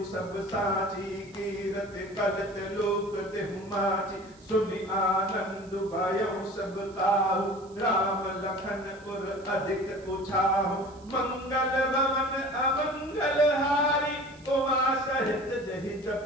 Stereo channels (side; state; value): right; noise; hiss, 27 dB below the sound